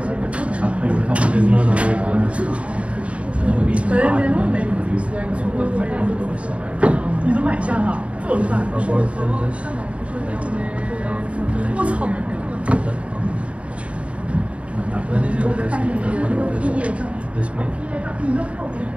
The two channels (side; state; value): left; late; 0.063 ms